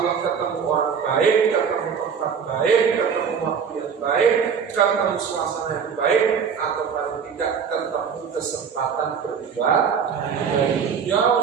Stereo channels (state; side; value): quieter; left; 6.7 dB